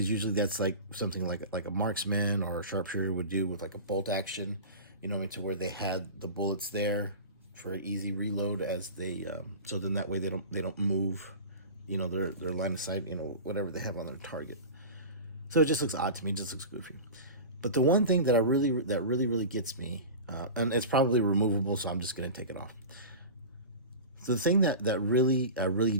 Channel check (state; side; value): inverted; both; correlation -0.31